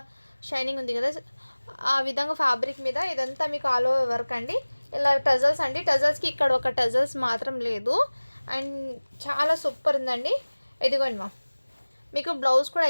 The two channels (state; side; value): inverted; both; correlation -1.00